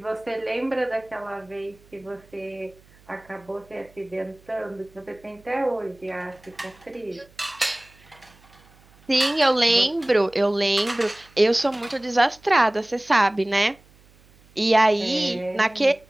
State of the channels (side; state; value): right; noise; hum, 28 dB below the sound